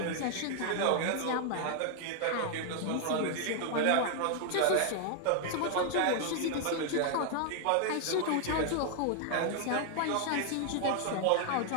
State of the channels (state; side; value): different; both; correlation 0.00